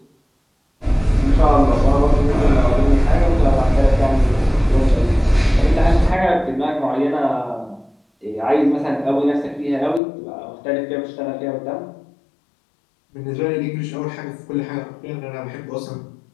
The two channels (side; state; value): right; drops out; at 10.0 s